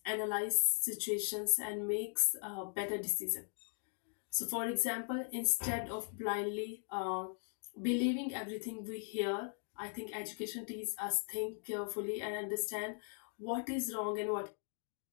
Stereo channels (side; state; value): right; silent; 52 dB below the other